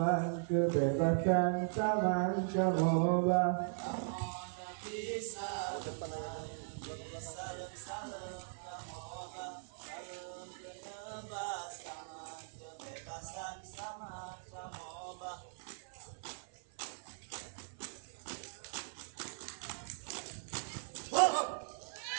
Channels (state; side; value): silent; left; 52 dB below the other